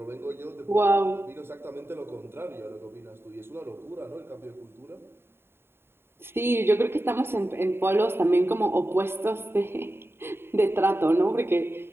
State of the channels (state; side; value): late; left; 0.11 ms